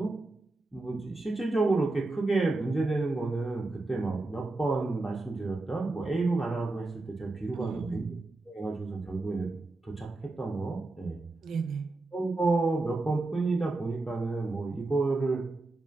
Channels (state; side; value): quieter; left; 3.1 dB